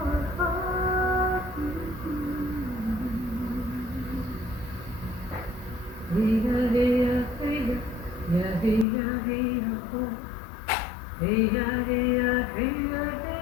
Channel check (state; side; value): drops out; right; at 8.8 s